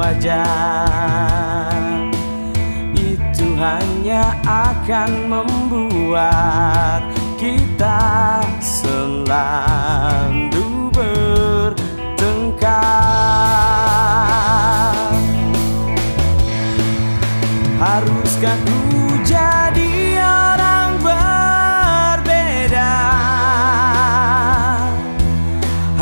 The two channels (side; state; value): both; inverted; correlation -1.00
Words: Itu hanya akan membuat kita selalu bertengkar. Haruskah ku jadi orang berbeda